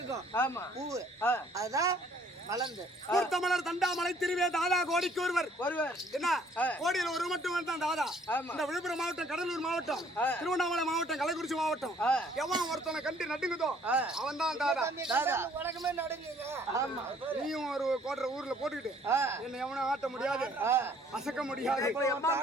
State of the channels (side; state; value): both; normal; correlation 0.60